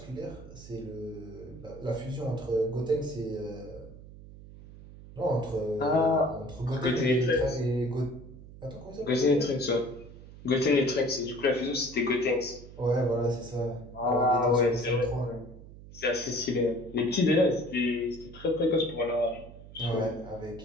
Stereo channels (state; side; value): noise; right; hum, 17 dB below the sound